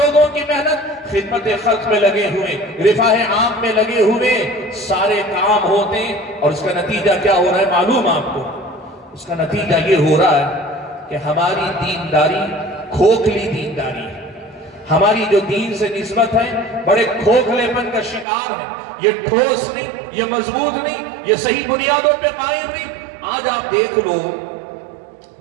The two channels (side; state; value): left; drops out; at 18.2 s